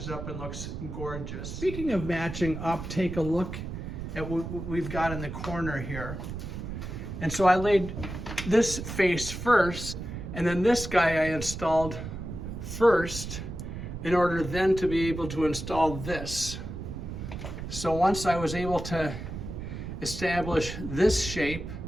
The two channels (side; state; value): right; noise; rumble, 7 dB below the sound